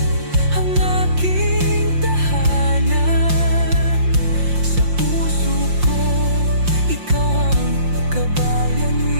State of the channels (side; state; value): left; late; 5.7 ms